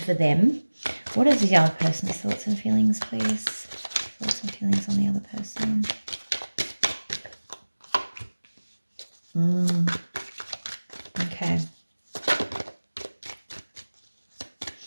them. What is the other person's thoughts and feelings, please? Thoughts and feelings on the other person. Okay.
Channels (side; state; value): both; inverted; correlation -1.00